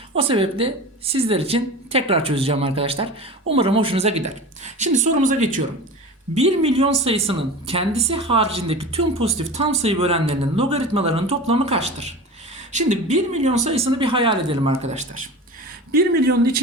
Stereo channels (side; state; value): both; normal; correlation 0.32